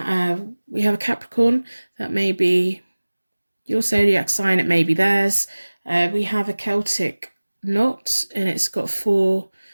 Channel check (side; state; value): both; inverted; correlation -1.00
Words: We have a Capricorn. That may be your zodiac sign. It may be theirs. We have a Celtic knot, and it's got 4